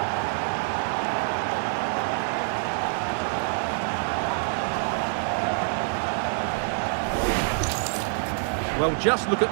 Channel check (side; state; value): left; silent; digital silence